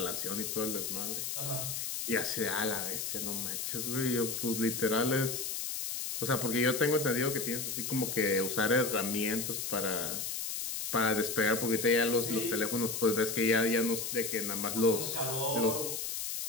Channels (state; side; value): noise; left; hiss, 3 dB below the sound